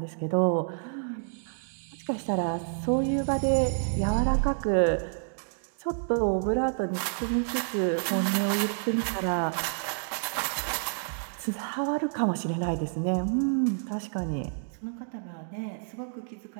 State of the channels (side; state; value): left; silent; digital silence